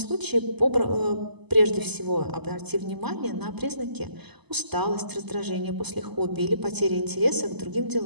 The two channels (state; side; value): late; left; 0.99 ms